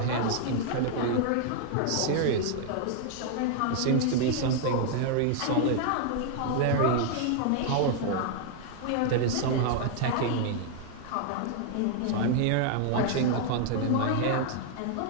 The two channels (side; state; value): both; different; correlation 0.00